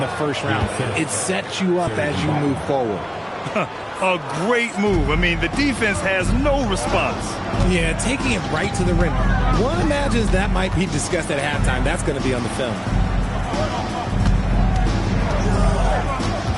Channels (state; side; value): identical; both; correlation 1.00